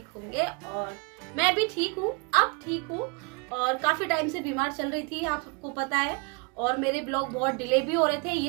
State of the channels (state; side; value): quieter; left; 32.8 dB